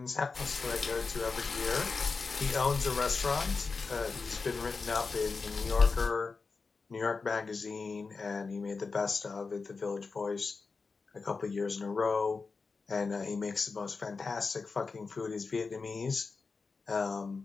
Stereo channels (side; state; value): right; quieter; 4.5 dB